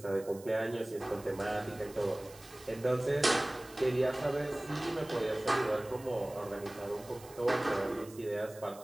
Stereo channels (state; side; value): noise; right; hiss, 20 dB below the sound